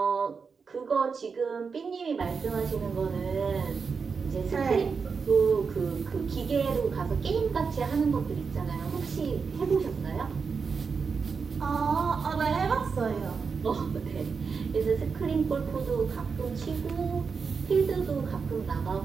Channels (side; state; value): left; quieter; 5.4 dB